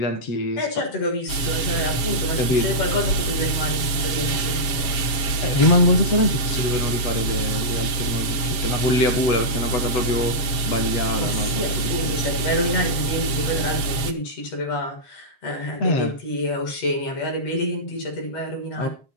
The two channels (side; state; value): right; late; 7.7 ms